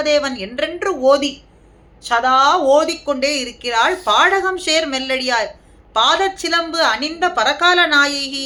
என்றென்று ஓதி சதா ஓதிக்கொண்டே இருக்கிறாள். பாடகம் சேர் மெல்லடியாய் பாதச்சிலம்பு அணிந்த பரகால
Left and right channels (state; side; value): identical; both; correlation 1.00